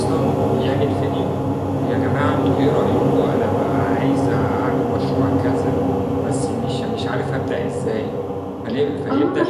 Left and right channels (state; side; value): identical; both; correlation 1.00